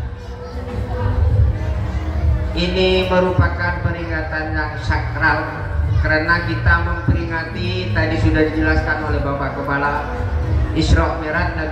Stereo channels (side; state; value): both; identical; correlation 1.00